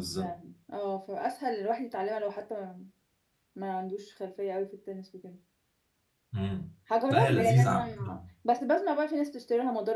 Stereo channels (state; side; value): identical; both; correlation 1.00